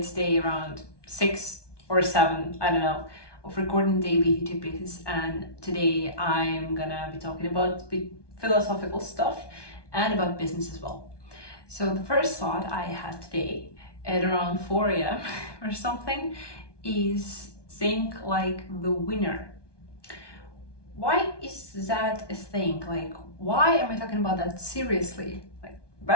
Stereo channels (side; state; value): right; late; 1.2 ms